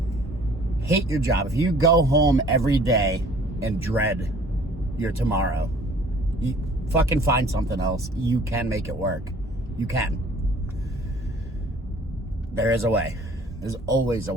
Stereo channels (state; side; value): normal; both; correlation 0.53